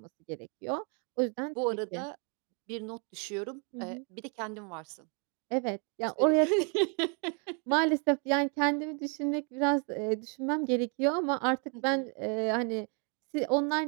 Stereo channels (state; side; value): quieter; left; 37.7 dB